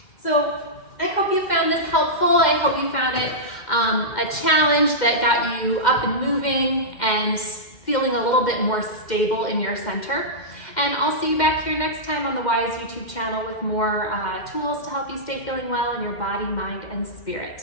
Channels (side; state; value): right; late; 2.1 ms